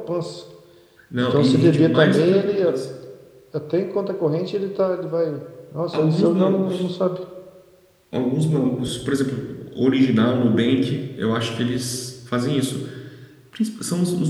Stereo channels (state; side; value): identical; both; correlation 1.00